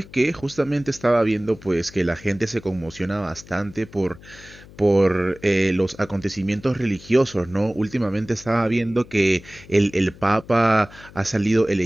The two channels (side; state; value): left; noise; hum, 21 dB below the sound